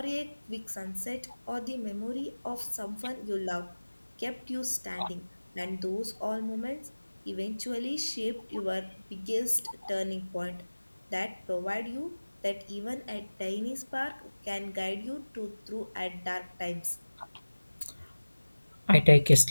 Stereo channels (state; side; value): inverted; both; correlation -1.00